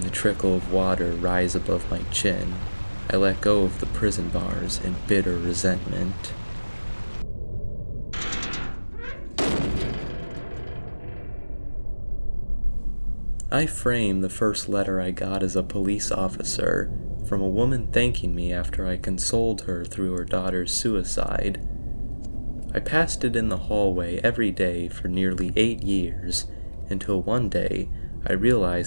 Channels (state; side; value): inverted; both; correlation -1.00